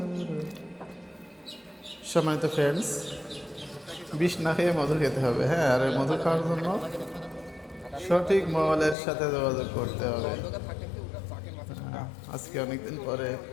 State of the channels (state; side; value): drops out; right; at 9.0 s